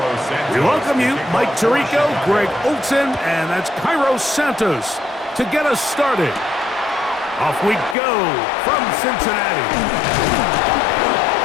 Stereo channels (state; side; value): drops out; right; at 8.0 s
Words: We welcome you, Mike Tirico, Greg Olson, and that's Cairo Santos to get us started. Off we go from Cincinnati.